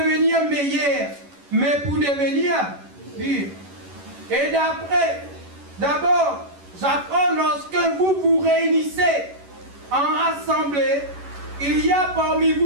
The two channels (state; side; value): late; left; 11 ms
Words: meilleur, mais pour devenir pire. Et d'abord, j'apprends lorsque vous vous réunissez en assemblée, il y a parmi